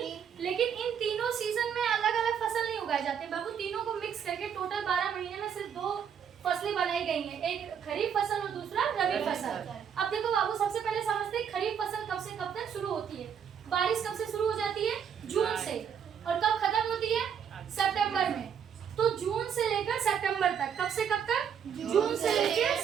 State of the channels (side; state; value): left; quieter; 7.9 dB